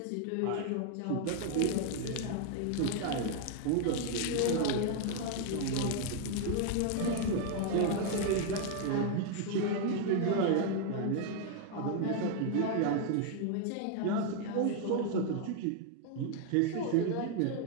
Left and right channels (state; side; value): different; both; correlation 0.00